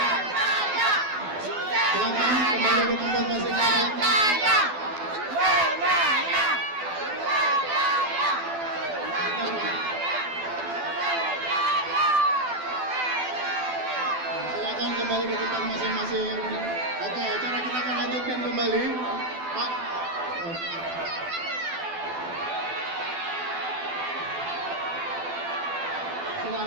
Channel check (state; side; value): late; left; 12 ms